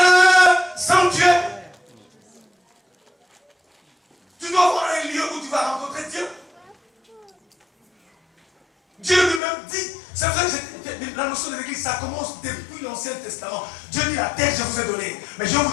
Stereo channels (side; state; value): right; drops out; at 9.4 s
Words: sanctuaire. Tu dois avoir un lieu où tu vas rencontrer Dieu. Dieu lui-même dit, c'est vrai que la notion de l'église, ça commence depuis l'Ancien Testament. Dieu dit, la terre, je vous ai donné. Mais je vais